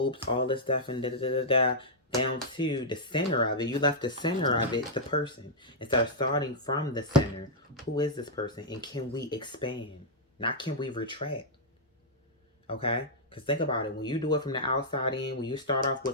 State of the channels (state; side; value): normal; both; correlation -0.08